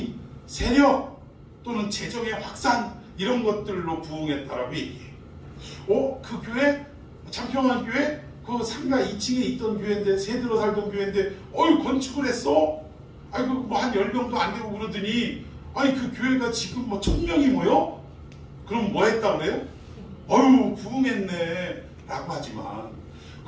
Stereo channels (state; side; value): identical; both; correlation 1.00